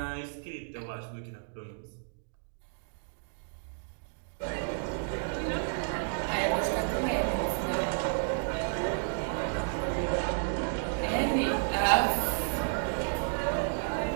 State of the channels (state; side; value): silent; left; digital silence